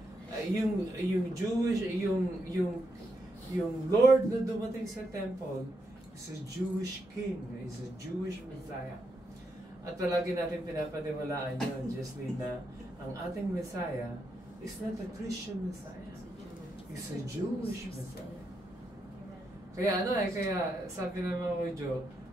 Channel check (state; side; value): normal; both; correlation 0.82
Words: yung Jewish, yung Lord na dumating sa temple is a Jewish king, is a Jewish Messiah. At palagi natin pinapaniwalaan yun, Jesly, na ang ating Messiah is not a Christian Messiah. It's a Jewish Messiah. Kaya kaya sabi naman ko, Joe,